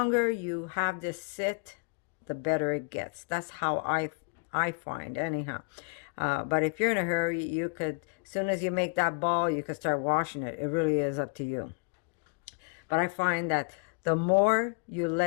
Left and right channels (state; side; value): quieter; right; 34.1 dB